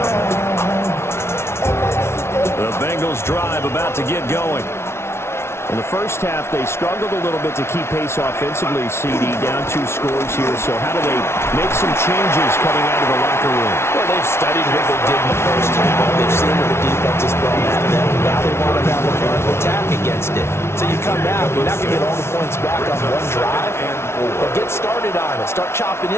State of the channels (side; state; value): right; late; 0.12 ms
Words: The Bengals drive about to get going. In the first half, they struggled a little bit to keep pace offensively, CD, down 2 scores here. So how do they make some changes coming out of the locker room? Well, they've studied what they did in the first half. They've seen what the defense has thrown at them. Now they want to have a plan to attack against it. So you come out, you're not going to get all the points back on one drive, but get started on it. Start chopping